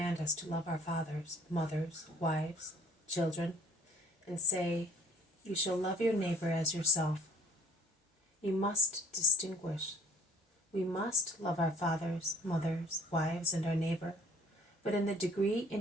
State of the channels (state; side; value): normal; both; correlation 0.55